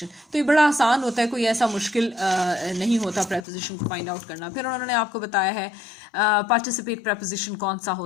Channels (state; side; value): drops out; right; at 3.5 s